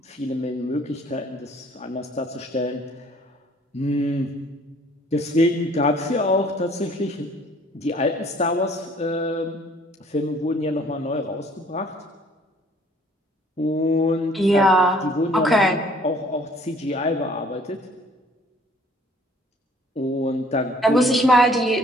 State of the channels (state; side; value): normal; both; correlation 0.57